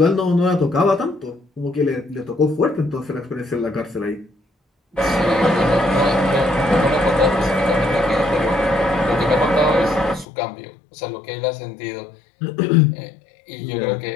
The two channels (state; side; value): drops out; right; at 10.2 s